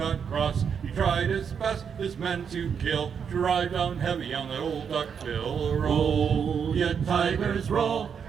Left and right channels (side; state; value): left; quieter; 7.1 dB